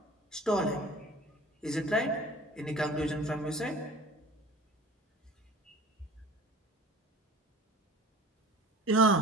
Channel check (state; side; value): normal; both; correlation 0.43